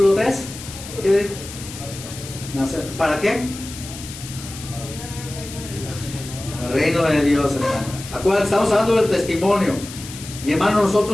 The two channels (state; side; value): noise; left; hiss, 13 dB below the sound